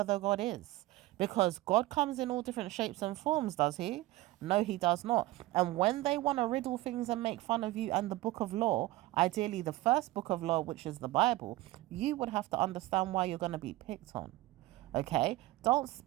the God is. Because God comes in all different shapes and forms, does he? No, he does not. And when they want to riddle things and make fun of you and the book of law, ideally the first book of law, which is the Bible, you would have to understand why you're going to be picked on. Okay, don't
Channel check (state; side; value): quieter; left; 18.0 dB